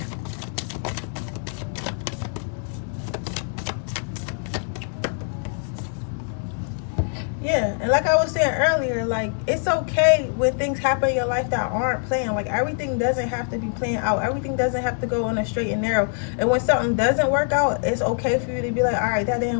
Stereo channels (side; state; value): right; silent; 56 dB below the other